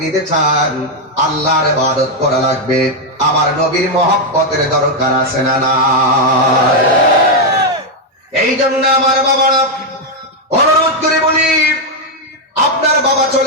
নিতে চান, আল্লাহর ইবাদত করা লাগবে। আমার নবীর মহব্বতের দরকার আছে না না? এই জন্য আমার বাবারা অনুরোধ করে বলি, আপনার বাবা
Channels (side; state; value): both; normal; correlation 0.02